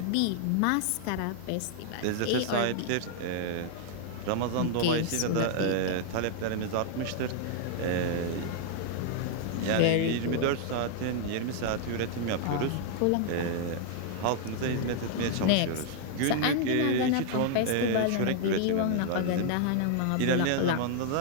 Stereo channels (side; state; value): both; different; correlation -0.01